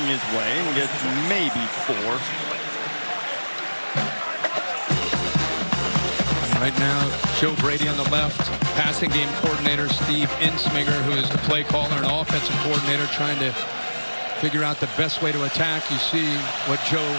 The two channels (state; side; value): inverted; both; correlation -1.00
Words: his way and gets maybe 4. Right now, Joe Brady on the left, passing game coordinator Steve Insminger, who is the play caller and offensive coordinator, trying to figure out the best way to attack. You see what Joe